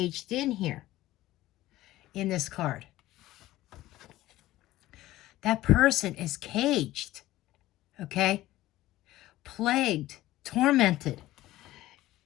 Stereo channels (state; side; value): quieter; right; 16.0 dB